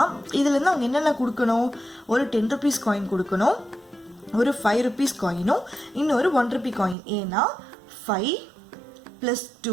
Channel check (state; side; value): drops out; left; at 7.0 s